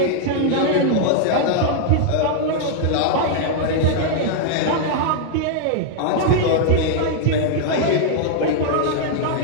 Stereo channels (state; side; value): different; both; correlation 0.00